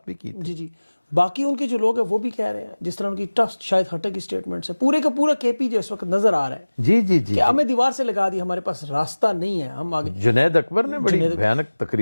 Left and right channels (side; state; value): both; inverted; correlation -1.00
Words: بھی کی. جی, باقی ان کے جو لوگ ہیں وہ بھی کہہ رہے ہیں, جس طرح ان کی ٹف شاید ہٹے کی سٹیٹمنٹس ہے, پورے کا پورا کے پی جو اس وقت نظر آ رہا ہے. جی کہ ہمیں دیوار سے لگا دی, ہمارے پاس راستہ نہیں ہے, ہم آگے. جنید اکبر نے بڑی بھیانک